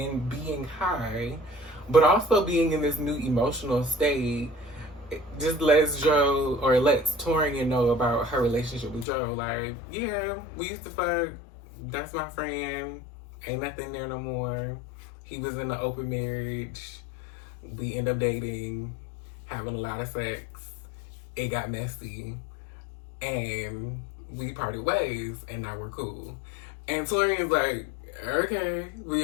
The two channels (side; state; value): right; drops out; at 9.1 s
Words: being high but also being in this new emotional state, just lets Taurean know about her relationship with Dro. Like, yeah, we used to fuck. That's my friend. Ain't nothing there no more. He was in an open marriage. We end up dating, having a lot of sex. It got messy. And we parted ways, and now we're cool. And Taurean's like, okay, we